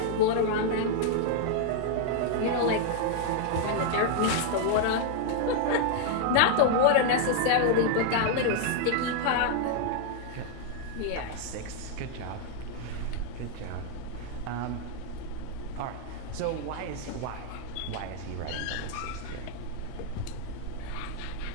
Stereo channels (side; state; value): both; different; correlation 0.00